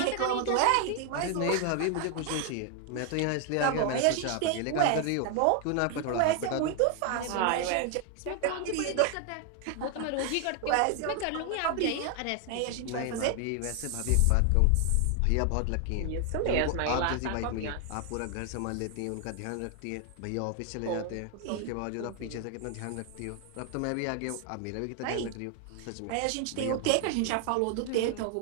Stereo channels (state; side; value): different; both; correlation 0.00